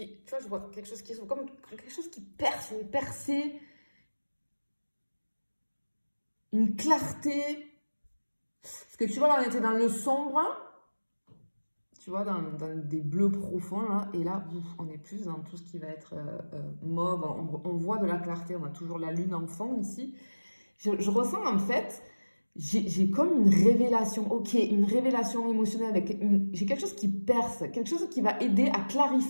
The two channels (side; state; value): both; inverted; correlation -1.00